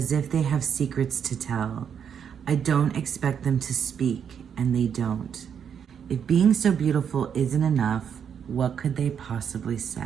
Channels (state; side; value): quieter; left; 7.8 dB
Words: if they have secrets to tell. I don't expect them to speak, and they don't. If being so beautiful isn't enough, what could they possibly